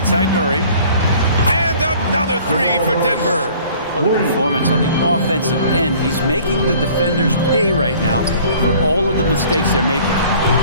side Murray. And another three for Denver. Well, the performance on the offensive end, he's making the defenders pay right now for all of the mistakes they're making.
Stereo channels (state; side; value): inverted; both; correlation -0.52